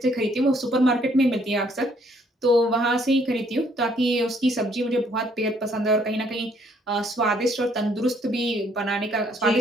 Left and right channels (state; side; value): normal; both; correlation 0.65